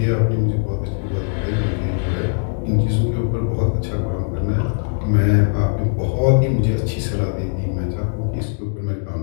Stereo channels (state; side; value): silent; right; digital silence